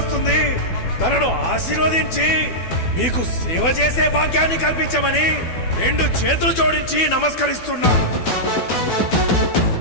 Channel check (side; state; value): right; late; 12 ms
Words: తనను ఆశీర్వదించి మీకు సేవ చేసే భాగ్యాన్ని కల్పించమని రెండు చేతులు జోడించి నమస్కరిస్తున్నా.